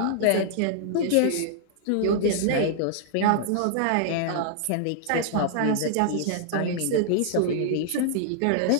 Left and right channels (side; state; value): both; different; correlation -0.01